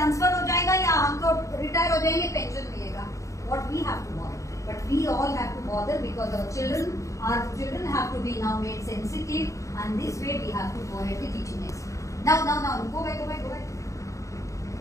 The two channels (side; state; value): right; late; 0.15 ms